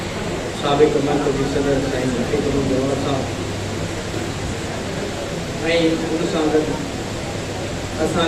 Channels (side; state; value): both; identical; correlation 1.00